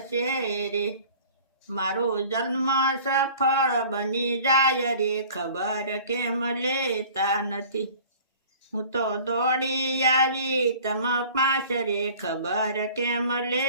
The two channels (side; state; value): both; inverted; correlation -0.46